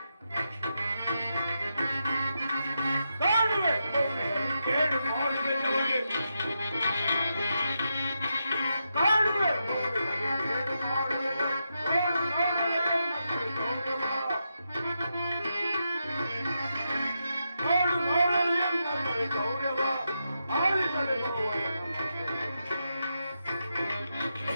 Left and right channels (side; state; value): both; inverted; correlation -0.85